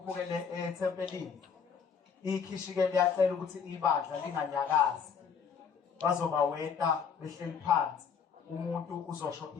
ethempelini. Ikhishike liyacela ukuthi ibandla linganyakazi. Bazoba weta behleli phansi. Umuntu uzosho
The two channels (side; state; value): right; quieter; 6.5 dB